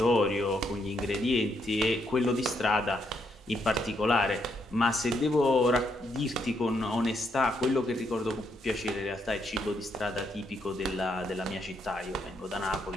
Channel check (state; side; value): normal; both; correlation 0.76